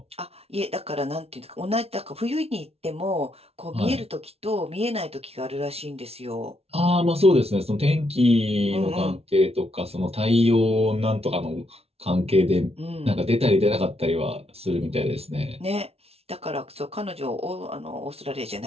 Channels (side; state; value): left; late; 0.30 ms